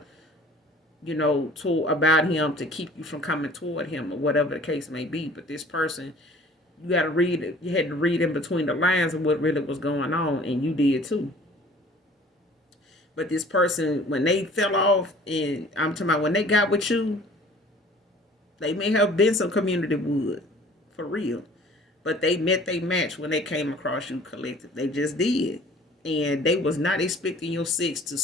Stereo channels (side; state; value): both; normal; correlation 0.50